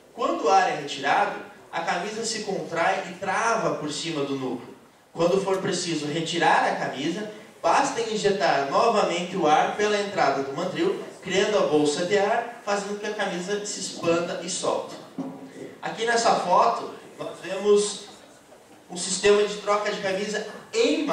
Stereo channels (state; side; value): identical; both; correlation 1.00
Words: Quando o ar é retirado, a camisa se contrai e trava por cima do núcleo. Quando for preciso retirar a camisa, basta injetar novamente o ar pela entrada do mandril, criando a bolsa de ar, fazendo com que a camisa se expanda e solte. Aqui nessa foto, nós vemos um sistema de troca de camisa em